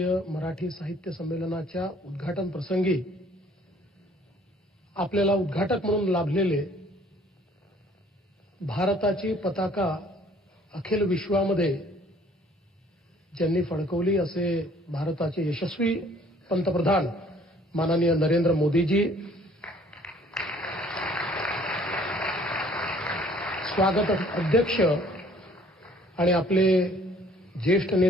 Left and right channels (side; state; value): both; normal; correlation 0.57